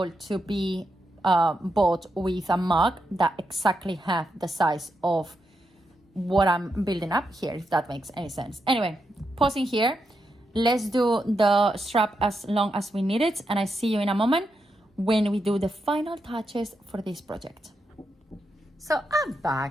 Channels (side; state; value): both; normal; correlation 0.84